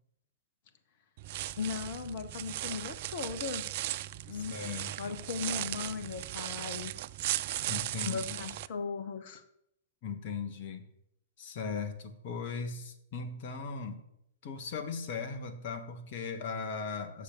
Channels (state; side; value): inverted; both; correlation -0.32